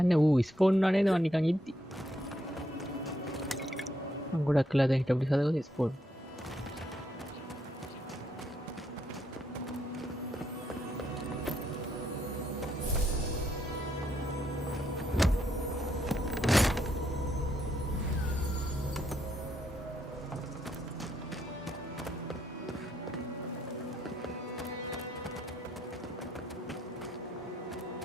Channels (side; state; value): both; normal; correlation 0.76